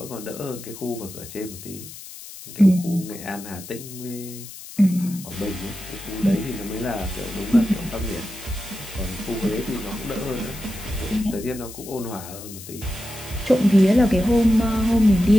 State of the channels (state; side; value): noise; left; hiss, 14 dB below the sound